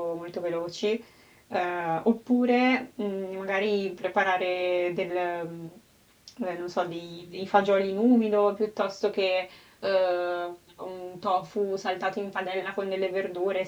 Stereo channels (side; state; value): both; identical; correlation 1.00